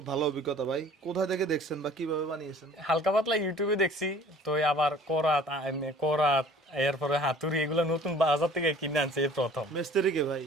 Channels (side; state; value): both; normal; correlation 0.50